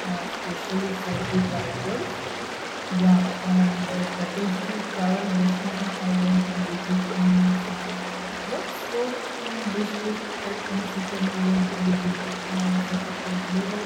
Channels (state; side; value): identical; both; correlation 1.00